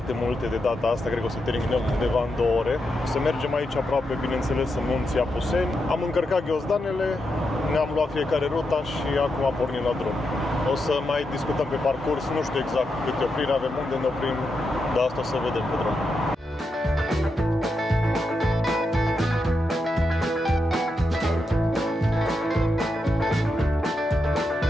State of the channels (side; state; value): both; normal; correlation 0.85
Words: multe de data asta, cred că o să terminăm undeva în 2 ore. O să mergem aici aproape, bineînțeles, în munții Apuseni. Am încărcat ghiozdanele, ne-am luat fiecare ruta și acum pornim la drum. O să mai discutăm pe parcurs, nu știu exact câte opriri avem, unde ne oprim, dar asta o să vedem pe drum.